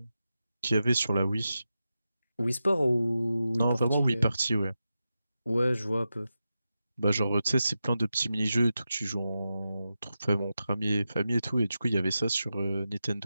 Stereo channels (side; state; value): both; inverted; correlation -0.91